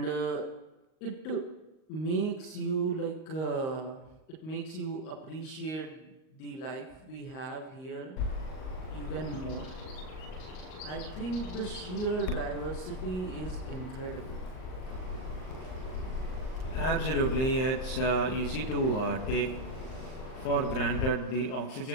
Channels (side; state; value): right; late; 38 ms